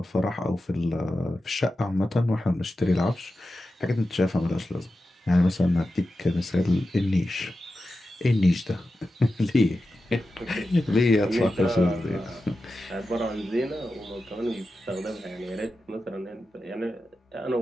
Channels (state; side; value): normal; both; correlation 0.92